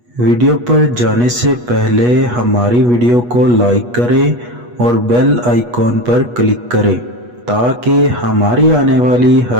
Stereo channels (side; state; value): left; late; 8.3 ms